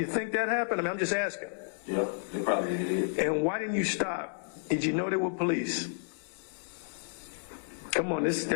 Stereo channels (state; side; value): silent; right; digital silence